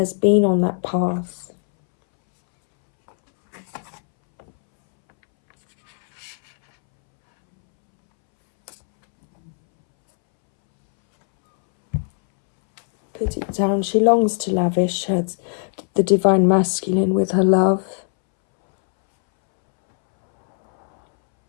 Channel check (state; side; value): silent; right; 66 dB below the other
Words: been on that path. Put it down. She longs to lavish the Divine Masculine with her love.